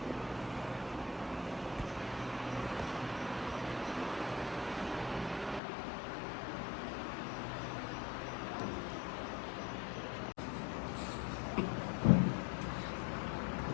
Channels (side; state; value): right; drops out; at 5.6 s